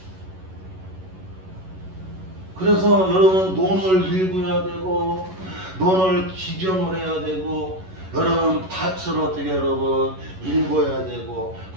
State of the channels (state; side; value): late; left; 11 ms